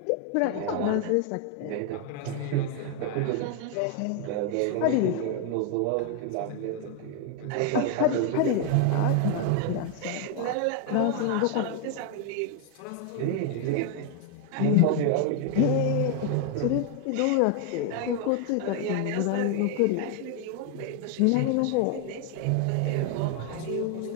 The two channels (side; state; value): both; different; correlation 0.01